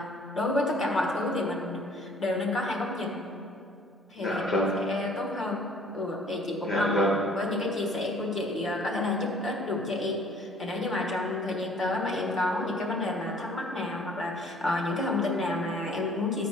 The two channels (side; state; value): both; normal; correlation 0.55